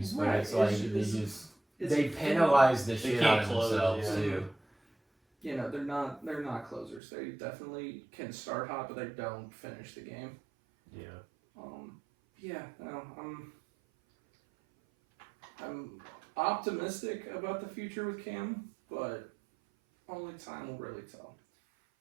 but Right, it's like it's- they penalize the They shit can't out of close, themselves yeah. too. you know, they're not closers. They definitely can start hot, but they don't finish the game. Yeah. Yeah, no, I'm optimistic about the future with Cam, but only time will really tell.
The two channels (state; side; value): drops out; left; at 7.0 s